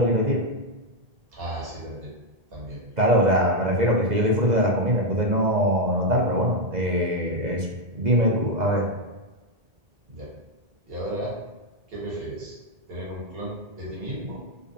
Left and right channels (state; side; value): late; left; 2.0 ms